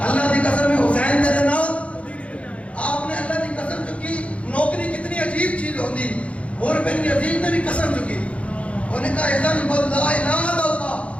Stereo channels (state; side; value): late; right; 0.063 ms